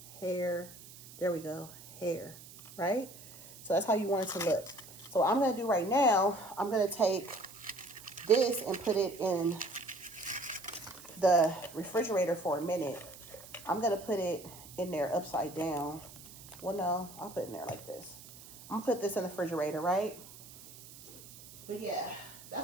hair. There we go. Hair, right? So that's how you want it to look. So what I'm going to do right now, I'm going to take this and put it in the refrigerator for a minute. I'm going to put it in there upside down. Well, no, I'll put it in there like this. I'm going to put this in the refrigerator, right? But yeah,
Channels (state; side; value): noise; right; hiss, 18 dB below the sound